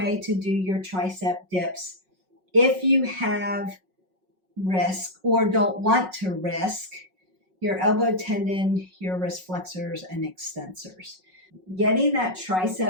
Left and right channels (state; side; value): late; left; 5.4 ms